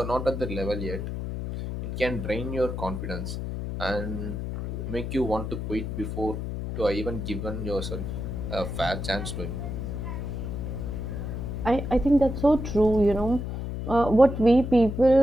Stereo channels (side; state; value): left; noise; hum, 5 dB below the sound